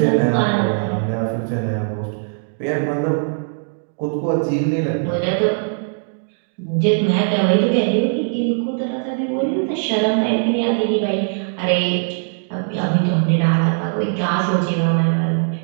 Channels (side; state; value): left; silent; digital silence